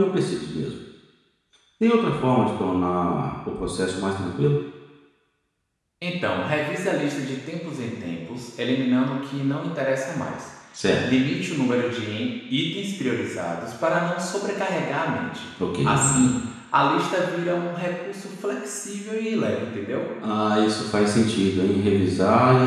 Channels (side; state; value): both; identical; correlation 1.00